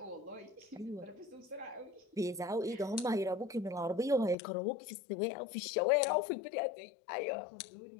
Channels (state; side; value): drops out; right; at 4.4 s